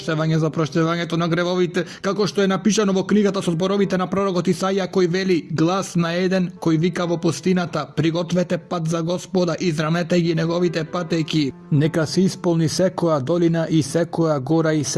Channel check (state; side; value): identical; both; correlation 1.00